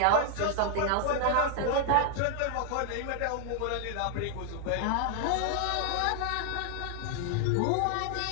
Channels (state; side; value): different; both; correlation 0.00